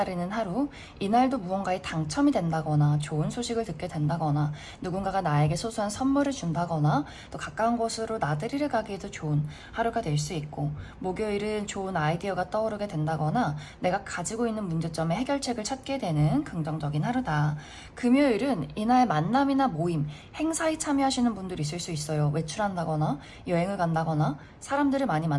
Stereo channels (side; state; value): both; identical; correlation 1.00